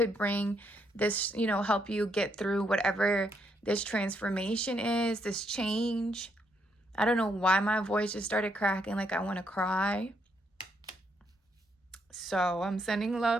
bring this, help you get through whatever this transformation is, this change. I don't know why my voice just started cracking like I want to cry. So I'm sending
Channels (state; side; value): normal; both; correlation 0.75